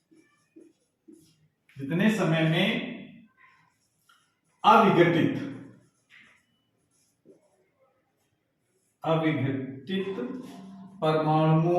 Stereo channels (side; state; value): both; identical; correlation 1.00